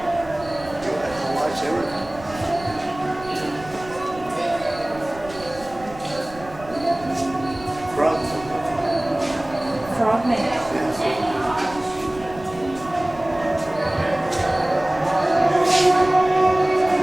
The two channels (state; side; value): noise; right; rumble, 18 dB below the sound